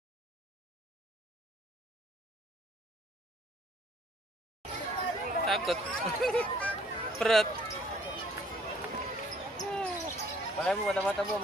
Takut. Berat. Boleh bu, mata-mata bu,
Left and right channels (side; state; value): both; normal; correlation 0.59